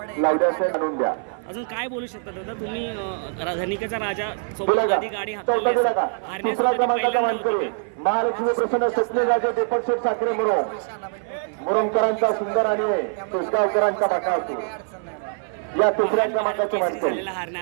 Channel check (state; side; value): silent; left; 56 dB below the other